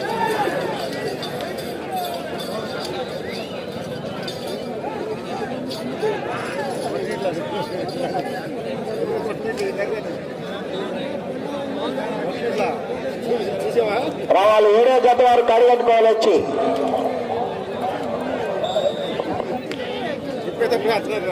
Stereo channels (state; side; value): identical; both; correlation 1.00